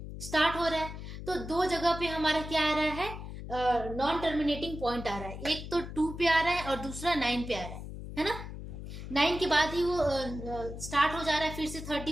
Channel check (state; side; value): noise; left; hum, 9 dB below the sound